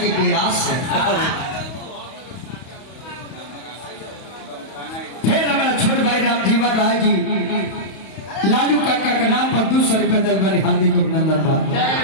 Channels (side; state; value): right; late; 31 ms